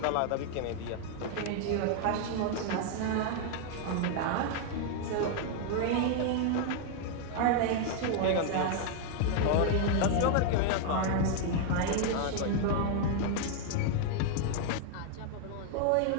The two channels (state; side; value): different; both; correlation 0.00